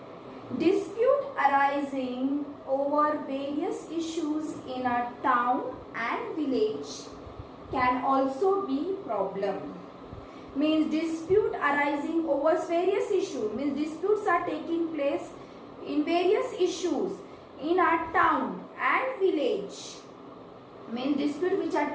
Dispute arising over various issues in a town and village can also be problem. Means dispute arising over various issues, means disputes are taking place in various issues in our town and village. Means dispute which are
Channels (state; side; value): identical; both; correlation 1.00